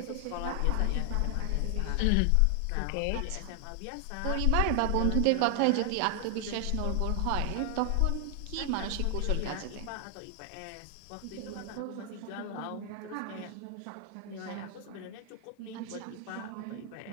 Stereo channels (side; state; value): both; different; correlation 0.00